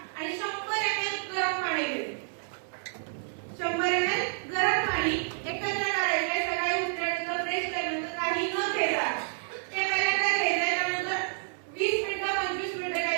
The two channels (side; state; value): left; silent; 58 dB below the other